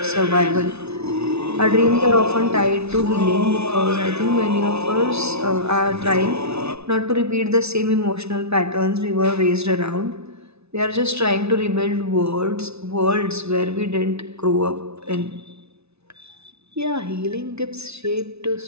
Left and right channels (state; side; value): late; left; 0.80 ms